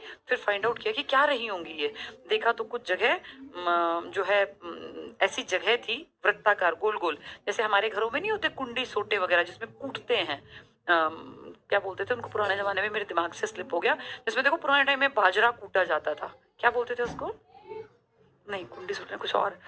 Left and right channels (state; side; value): identical; both; correlation 1.00